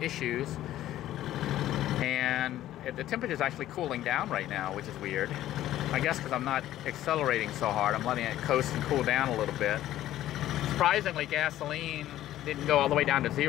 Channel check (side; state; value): right; quieter; 13.5 dB